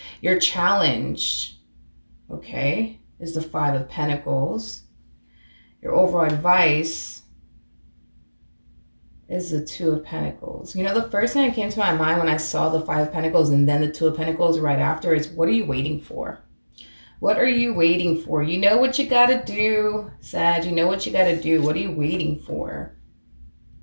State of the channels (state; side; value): inverted; both; correlation -1.00